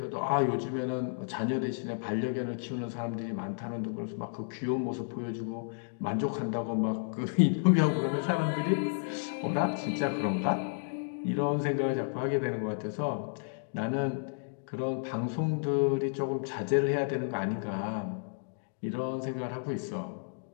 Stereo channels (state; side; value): silent; right; digital silence